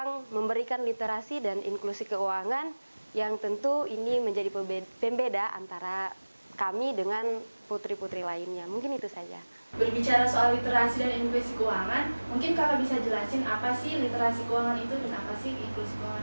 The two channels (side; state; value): both; inverted; correlation -1.00